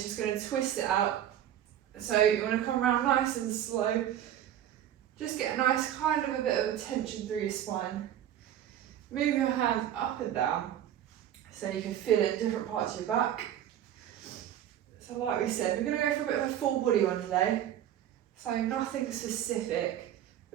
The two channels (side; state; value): left; quieter; 11.1 dB